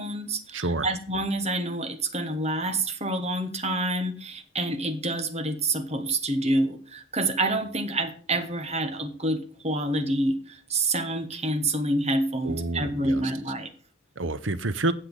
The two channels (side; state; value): both; normal; correlation 0.45